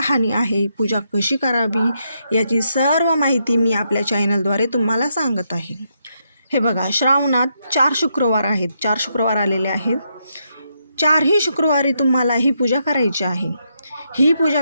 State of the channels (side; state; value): both; inverted; correlation -0.80